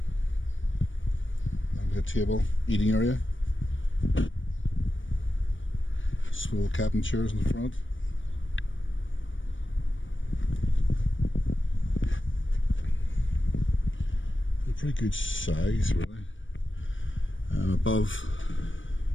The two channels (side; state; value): right; late; 0.56 ms